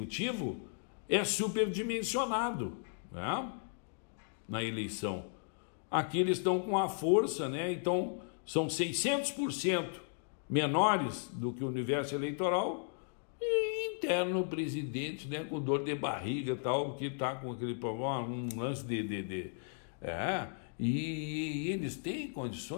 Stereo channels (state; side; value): silent; right; digital silence